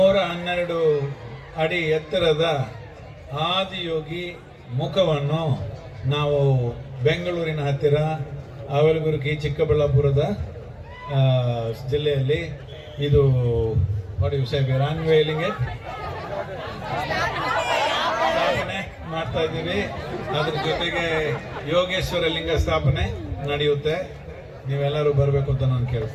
ಅಡಿ ಎತ್ತರದ ಆದಿಯೋಗಿ ಮುಖವನ್ನು ನಾವು ಬೆಂಗಳೂರಿನ ಹತ್ತಿರ ಅವಲಗುರ್ಗಿ ಚಿಕ್ಕಬಳ್ಳಾಪುರದ ಜಿಲ್ಲೆಯಲ್ಲಿ ಇದು ಅನ್ವೇಲಿಂಗ್ ಸ್ಥಾಪನೆ ಮಾಡ್ತಾ ಇದ್ದೀವಿ. ಅದ್ರ ಜೊತೆಗೆ ಯೋಗೇಶ್ವರ ಲಿಂಗ ಸ್ಥಾಪನೆ ನಡೆಯುತ್ತೆ. ನೀವೆಲ್ಲರೂ ಬರಬೇಕು ಅಂತ ನಾನು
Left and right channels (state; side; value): identical; both; correlation 1.00